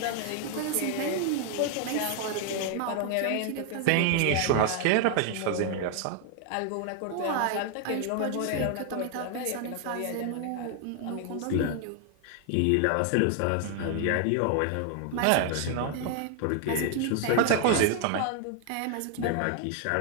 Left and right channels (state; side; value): different; both; correlation 0.00